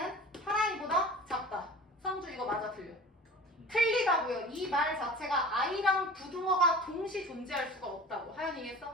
8i보다 작다. 성주 이거 맞아 틀려? 틀리다고요. 이 말 자체가 i랑 부등어가 동시 존재할 수가 없다고. 하연이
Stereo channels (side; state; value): both; normal; correlation 0.40